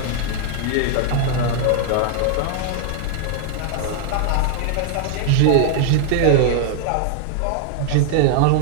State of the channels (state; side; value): different; both; correlation 0.00